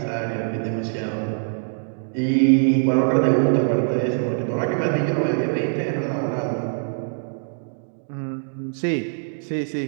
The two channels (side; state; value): left; silent; digital silence